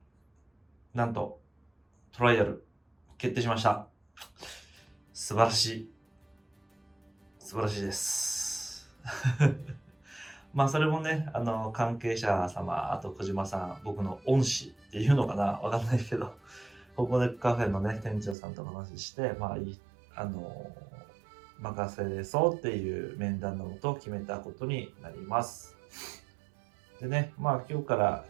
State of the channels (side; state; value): left; drops out; at 18.4 s